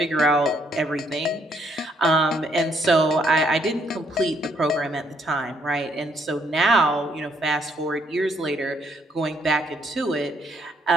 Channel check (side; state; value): both; normal; correlation 0.70